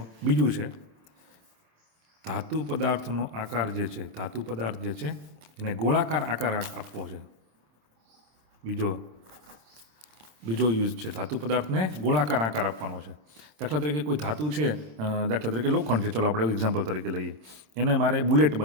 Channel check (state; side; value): late; left; 27 ms